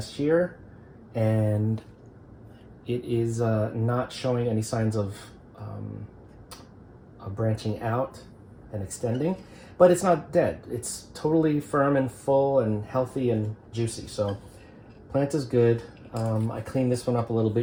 year. And it is not showing any signs of branching out and extending, but it's not dead. It's totally firm and full and healthy and juicy. So plant is good. I cleaned this one up a little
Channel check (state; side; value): identical; both; correlation 1.00